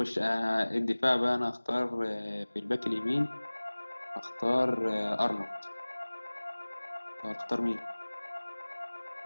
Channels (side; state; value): both; inverted; correlation -1.00